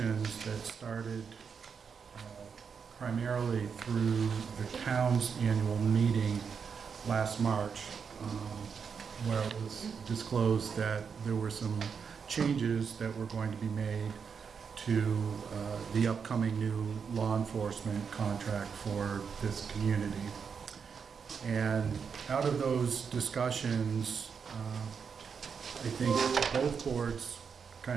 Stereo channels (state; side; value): quieter; left; 6.3 dB